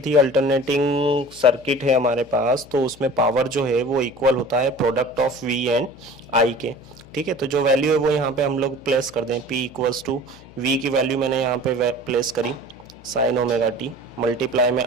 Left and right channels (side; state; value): left; noise; hum, 22 dB below the sound